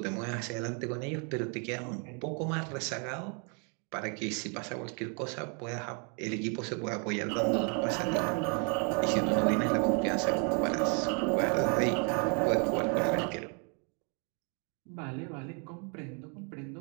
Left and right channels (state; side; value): quieter; left; 37.7 dB